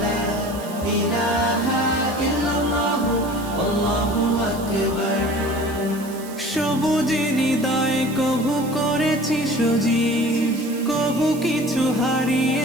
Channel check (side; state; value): right; noise; hiss, 17 dB below the sound